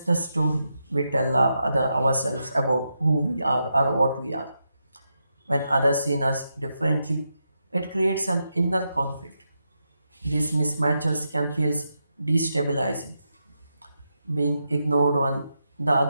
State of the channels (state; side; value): inverted; both; correlation -0.85